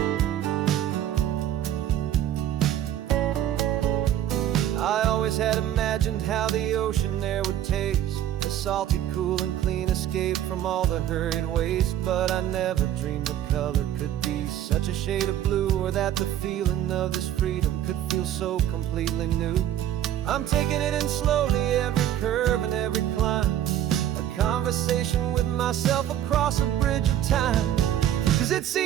I always had imagined how the ocean there would taste, a salty, cool, and clean escape from all the hurried waste. But I never dreamed the color could be such a shade of blue, or that the feeling of this freedom could feel so completely new. I'm taking it in slowly, every curve and every climb, a conversation with myself across a bridge of time. 'Cause it's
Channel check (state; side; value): quieter; left; 11.5 dB